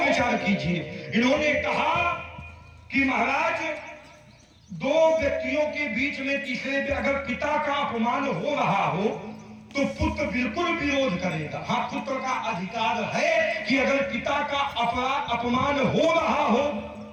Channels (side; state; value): both; identical; correlation 1.00